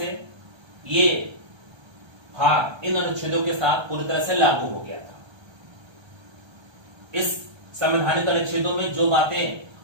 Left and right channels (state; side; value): late; left; 1.3 ms